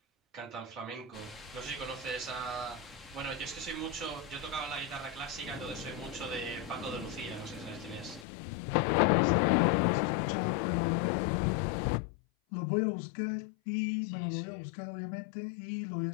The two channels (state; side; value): drops out; right; at 8.2 s